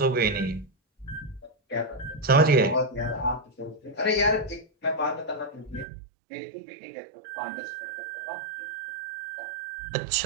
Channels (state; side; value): drops out; left; at 5.9 s